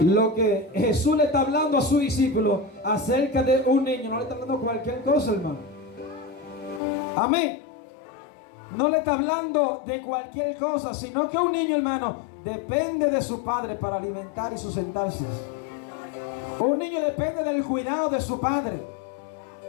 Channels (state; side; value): drops out; right; at 6.8 s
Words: lo que Jesús le está hablando a su discípulo acerca de un niño, no le está hablando cualquier cosa, hermano. Amén. No le está hablando de cualquier cosa, sino que un niño, hermano, depende de su padre para alimentar y sustentarse. Un niño depende del cuidado de su padre.